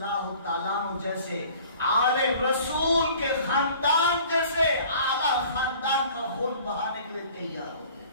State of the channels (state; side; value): inverted; both; correlation -0.49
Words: تعالیٰ عنہ جیسے آل رسول کے خاندان جیسے اعلیٰ خاندان کا خون بہانے کے لیے تیار ہو گئے۔